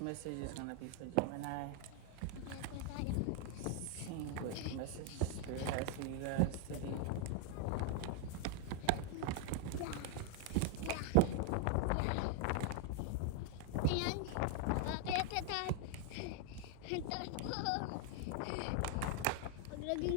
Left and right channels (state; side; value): different; both; correlation 0.00